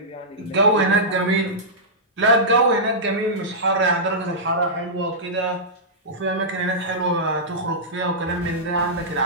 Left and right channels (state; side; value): normal; both; correlation -0.13